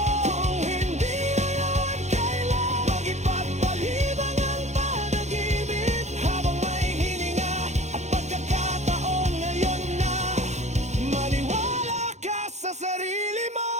Kung hindi ngayon, kailan? Mag-ipagpalibang ang panaginip habang may hininga at pagkakataon, ngayon na. Maniwala ka sa sarili mo,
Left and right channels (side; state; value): left; late; 0.33 ms